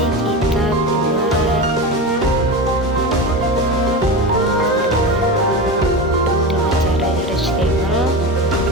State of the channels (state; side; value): normal; both; correlation 0.23